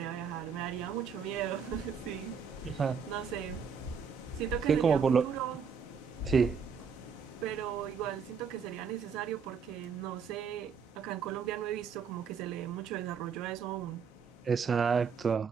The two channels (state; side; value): quieter; left; 6.4 dB